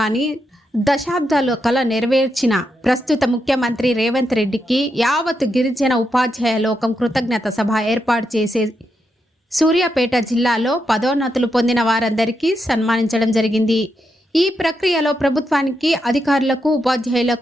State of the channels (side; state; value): both; normal; correlation 0.84